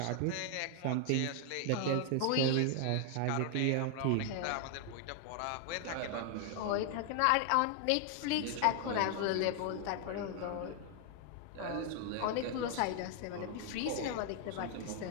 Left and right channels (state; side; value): different; both; correlation 0.00